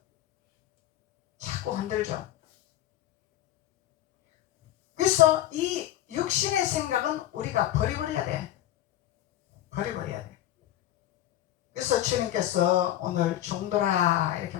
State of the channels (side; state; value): right; quieter; 13.1 dB